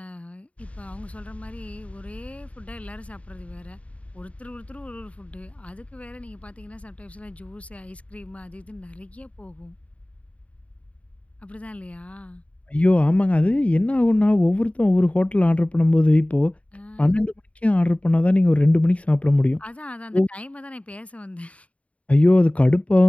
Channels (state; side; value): late; right; 0.065 ms